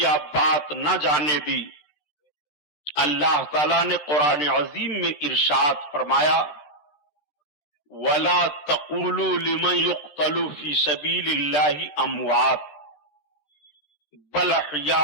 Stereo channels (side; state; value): right; late; 13 ms